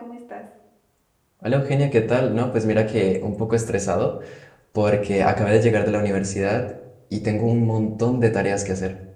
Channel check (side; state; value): both; identical; correlation 1.00